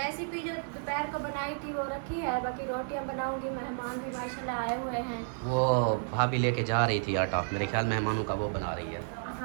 जो दोपहर को बनाई थी वो रखी है, बाकी रोटियां बनाऊंगी। मेहमान भी माशाल्लाह आए हुए हैं। वो भाभी लेके जा रही थी आटा, मेरे ख्याल मेहमानों का वो बना रही है।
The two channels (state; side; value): silent; left; digital silence